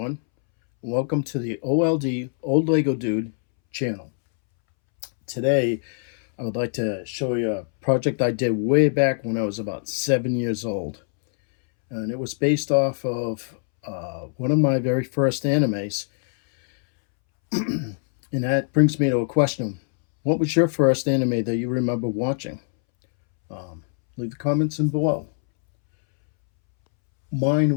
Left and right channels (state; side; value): silent; right; 63 dB below the other